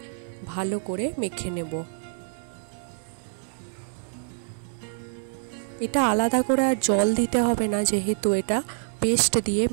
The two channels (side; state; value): left; silent; digital silence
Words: ভালো করে মেখে নেব। এটা আলাদা করে আর জল দিতে হবে না, যেহেতু এটা পেস্ট দিয়ে